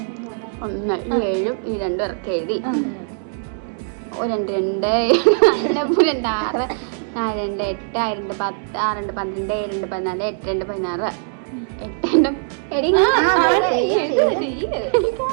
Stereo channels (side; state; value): left; silent; digital silence